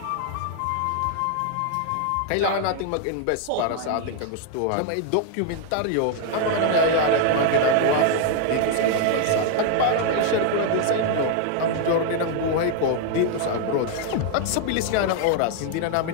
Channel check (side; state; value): both; different; correlation 0.00